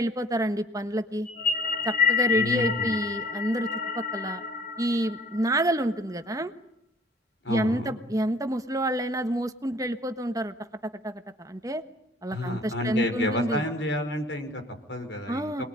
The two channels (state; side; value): normal; both; correlation 0.54